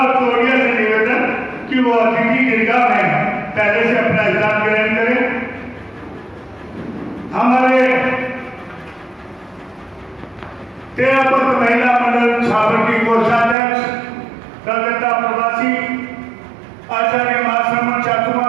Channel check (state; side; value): drops out; left; at 13.6 s